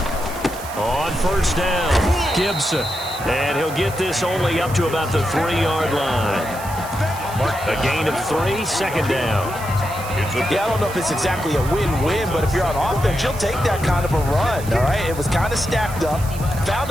On first down, Gibson. And he'll get this only up to about the 3-yard line. A gain of 3, 2nd down. Yeah, I don't know if it's exactly a win-win, but if you're on offense, you'll take that kind of a run, all right? It was kind of stacked up, found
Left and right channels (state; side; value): noise; right; hiss, 15 dB below the sound